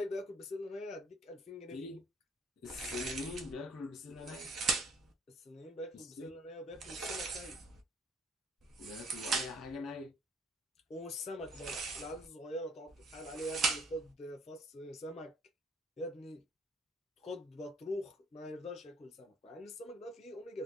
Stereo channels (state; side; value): normal; both; correlation 0.61